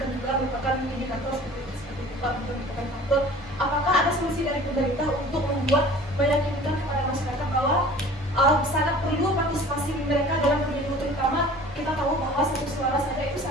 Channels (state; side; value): normal; both; correlation 0.45